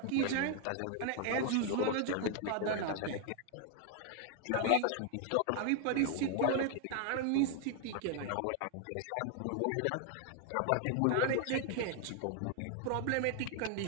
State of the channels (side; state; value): both; different; correlation 0.00